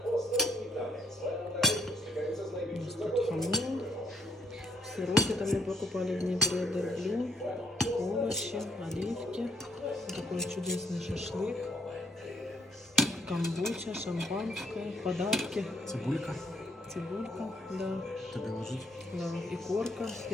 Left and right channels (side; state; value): both; normal; correlation 0.69